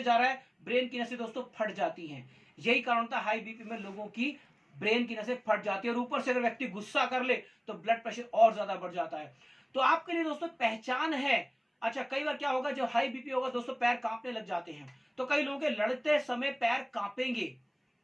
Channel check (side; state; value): both; identical; correlation 1.00